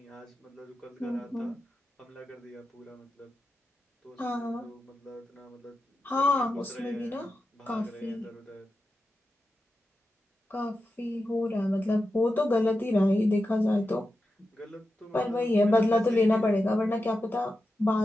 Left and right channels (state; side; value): normal; both; correlation 0.90